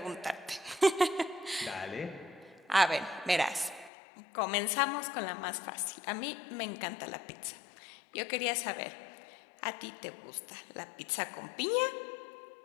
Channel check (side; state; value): right; drops out; at 3.9 s